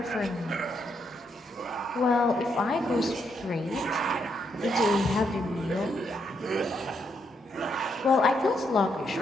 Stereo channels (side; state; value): both; normal; correlation 0.77